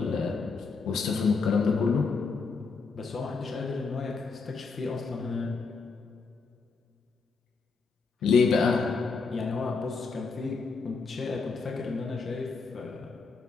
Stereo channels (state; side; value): quieter; right; 4.6 dB